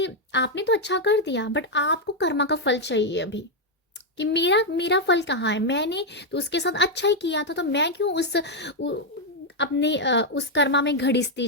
आपने तो अच्छा कर दिया बट आपको कर्मा का फल चाहिए अभी, कि मेरा मेरा फल कहाँ है, मैंने तो उसके साथ अच्छा ही किया था, तो मैं क्यों अपने उस कर्मा में घड़ीसती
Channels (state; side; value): normal; both; correlation 0.01